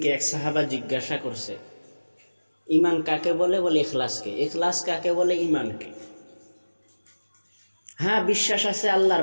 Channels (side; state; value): both; inverted; correlation -1.00